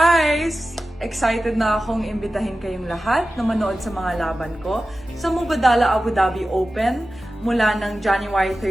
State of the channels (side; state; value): both; normal; correlation 0.94